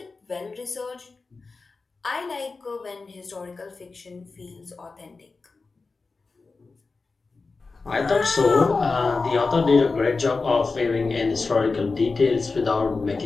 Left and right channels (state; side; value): quieter; right; 4.1 dB